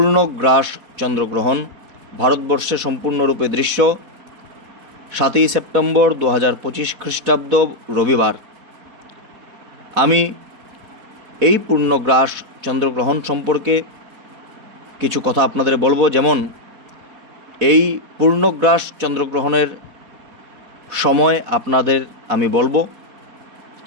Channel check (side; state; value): left; late; 4.1 ms